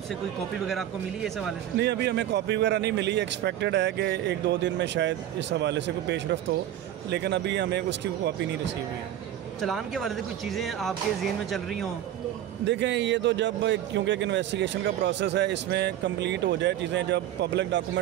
कोई कॉपी वगैरह आपको मिली है इस हवाले से? नहीं, अभी हमें कॉपी वगैरह नहीं मिली। एक्सपेक्टेड है कि 1-2 दिन में शायद इस हवाले से कोई पेशरफ्त हो, लेकिन अभी हमें उसकी कॉपी नहीं रिसीव हुई है। चलान के हवाले से कुछ चीज़ें आपके ज़हन में चल रही हों? देखें, ये तो जब क्योंकि एक इन्वेस्टिगेशन का प्रोसेस है, इसमें कंप्लीट हो जाए चीज़ें, जब पब्लिक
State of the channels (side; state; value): left; quieter; 11.7 dB